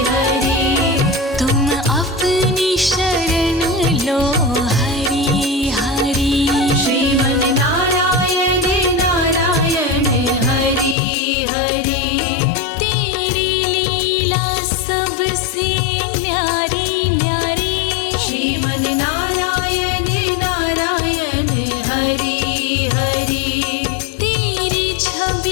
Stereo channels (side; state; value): right; drops out; at 11.0 s